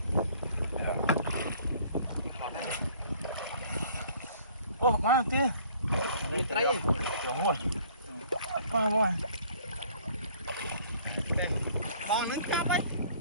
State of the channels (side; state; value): both; inverted; correlation -0.55